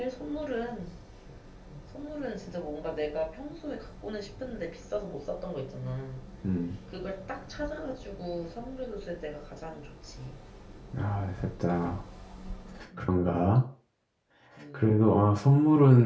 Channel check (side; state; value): both; identical; correlation 1.00